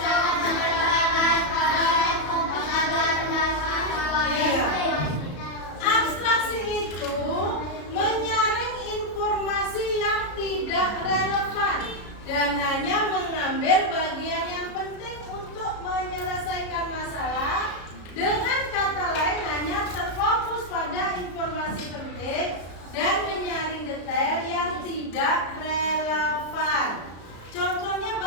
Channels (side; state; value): right; late; 33 ms